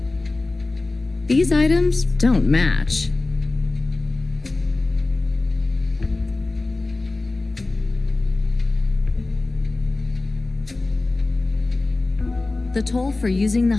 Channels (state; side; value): quieter; right; 3.2 dB